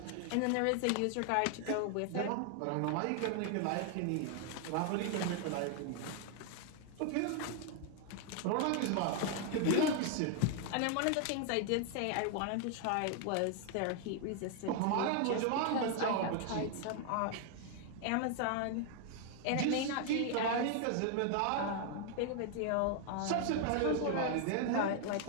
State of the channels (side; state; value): both; different; correlation 0.00